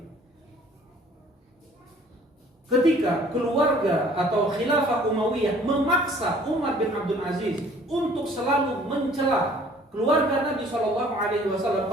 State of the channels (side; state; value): both; normal; correlation 0.54